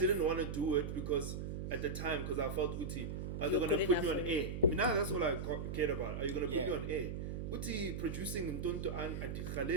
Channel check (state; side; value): noise; right; hum, 4 dB below the sound